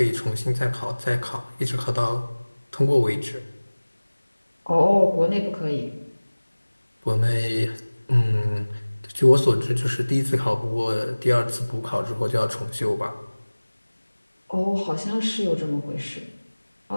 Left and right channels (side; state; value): both; inverted; correlation -1.00